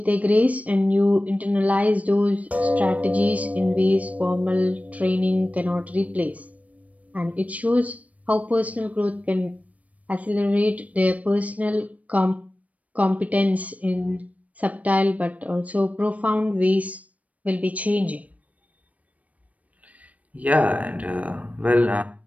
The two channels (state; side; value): late; left; 0.068 ms